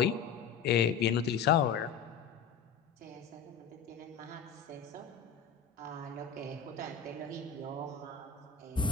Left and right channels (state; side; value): quieter; right; 6.7 dB